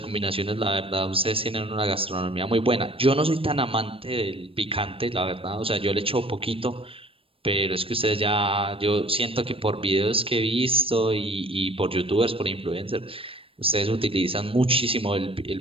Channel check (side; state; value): left; late; 0.27 ms